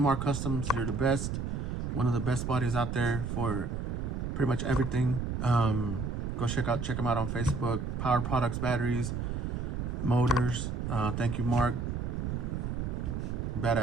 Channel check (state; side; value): noise; right; rumble, 3 dB below the sound